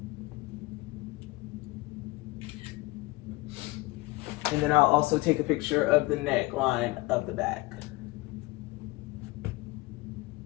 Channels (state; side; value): quieter; right; 21.2 dB